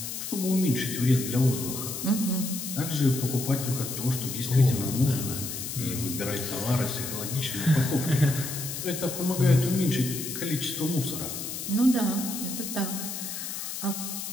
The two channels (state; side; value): noise; left; hiss, 6 dB below the sound